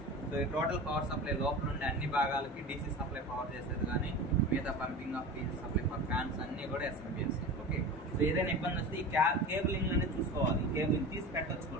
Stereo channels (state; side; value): normal; both; correlation 0.31